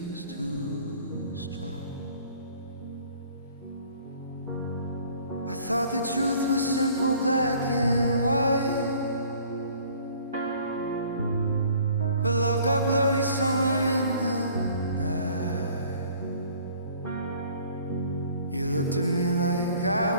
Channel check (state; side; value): inverted; both; correlation -0.54